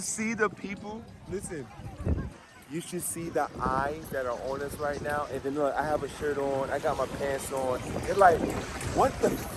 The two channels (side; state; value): both; identical; correlation 1.00